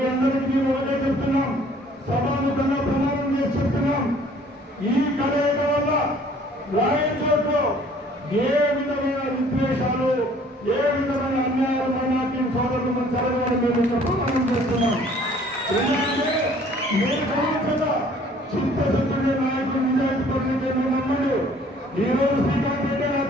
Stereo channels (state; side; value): normal; both; correlation 0.56